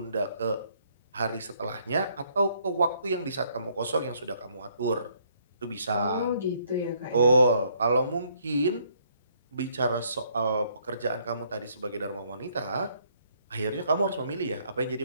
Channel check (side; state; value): both; inverted; correlation -0.67